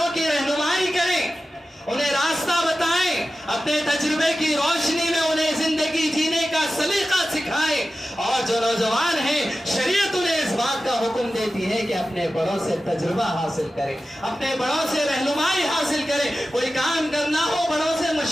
کی رہنمائی کریں، انہیں راستہ بتائیں، اپنے تجربے کی روشنی میں انہیں زندگی جینے کا سلیقہ سکھائیں، اور جو نوجوان ہیں شریعت انہیں اس بات کا حکم دیتی ہے کہ اپنے بڑوں سے تجربہ حاصل کریں، اپنے بڑوں سے رہنمائی حاصل کریں، کوئی کام کرنا ہو بڑوں سے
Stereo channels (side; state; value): both; normal; correlation 0.94